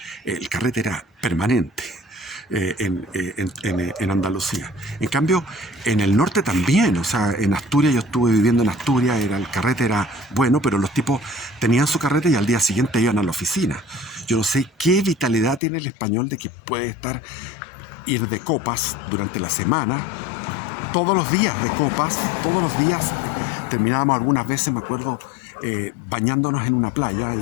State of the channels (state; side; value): drops out; right; at 15.6 s